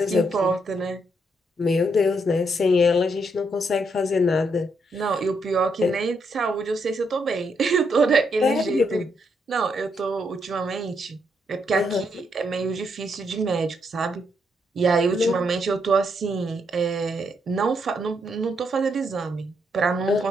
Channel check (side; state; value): both; normal; correlation 0.77